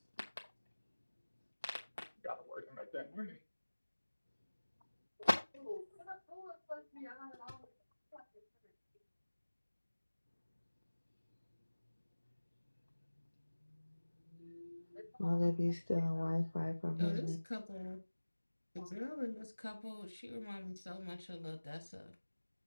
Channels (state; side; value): inverted; both; correlation -1.00